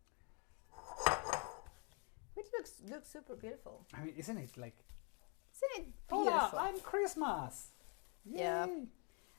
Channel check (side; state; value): right; quieter; 35.7 dB